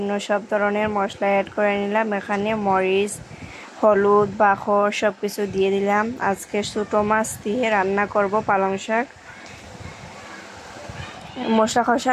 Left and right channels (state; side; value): identical; both; correlation 1.00